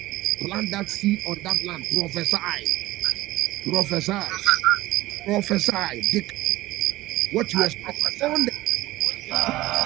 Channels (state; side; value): quieter; left; 17.4 dB